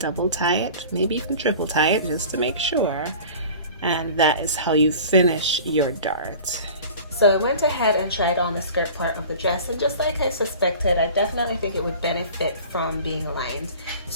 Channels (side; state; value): both; inverted; correlation -0.41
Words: tie it, maybe even triple tie it just to make sure, and that is how you finish your dart. So I went ahead and tried on the skirt part of the dress, and just like I suspected, I definitely think it would benefit from being lined.